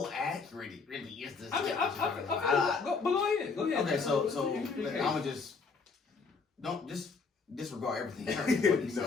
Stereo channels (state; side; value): quieter; right; 4.8 dB